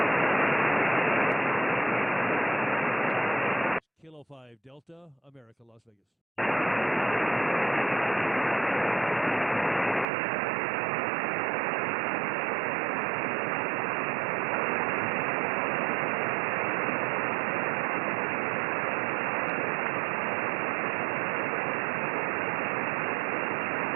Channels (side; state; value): left; drops out; at 10.1 s